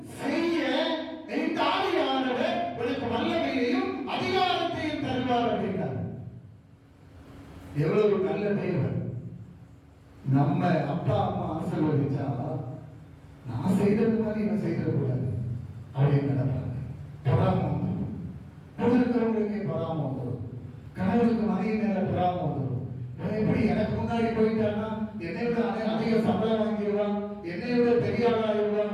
செய்ய இந்த ஆவியானவர் உனக்கு வல்லமையையும் அதிகாரத்தையும் தருவார் அப்படின்னார். எவ்வளவு நல்ல தேவன்! நம்ம அப்பா அம்மா ஆசீர்வதிச்சா நான் செய்தது மாதிரி இவன் செய்திடக்கூடாது அப்படின்னு நினைப்பாங்க. பொறாம வந்துடும். கூட இருக்கிறவங்களுக்கே பொறாம வந்துடும். கணவனுக்கு மனைவி மேல பொறாம வந்துடும். எப்படி எனக்கு முன்னாடி போயிட்டான்னா என்னை விட அதிக சம்பளம் வாங்கிடுவான், என்னை விட பெரிய ஆளாயிடுவான்,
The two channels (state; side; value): identical; both; correlation 1.00